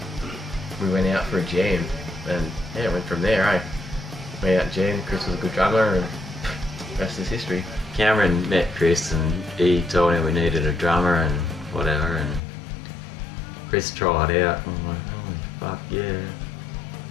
we went out for a jam, and went from there. Went out and jammed. Chris was a good drummer, and rest is history. Cameron met Chris and he told him we needed a drummer and whatever, and Chris tried out. I'm like, oh fuck yeah,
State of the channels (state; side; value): drops out; right; at 12.4 s